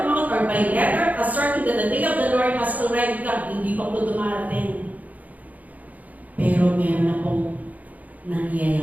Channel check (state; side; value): late; left; 0.077 ms